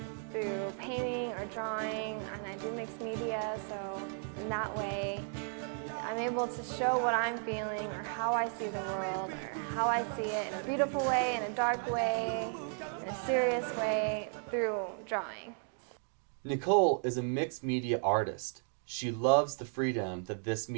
through painting or drawing, and I do mixed media, so in that way I'm able to show what I'm feeling or how I see the world or how I see it in a beautiful way, in a dark way, in a serious way through drawing. Nicole is a mixed media artist. She loves the freedom that this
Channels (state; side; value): silent; left; 55 dB below the other